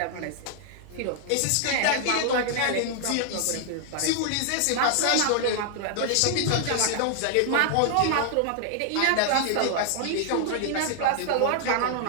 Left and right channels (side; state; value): both; different; correlation 0.00